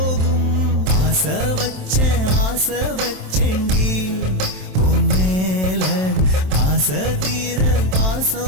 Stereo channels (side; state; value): left; late; 27 ms